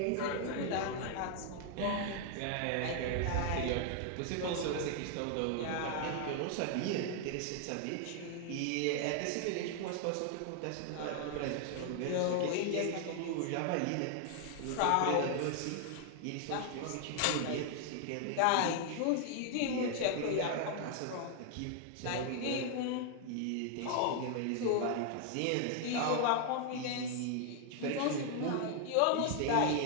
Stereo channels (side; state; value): both; different; correlation 0.00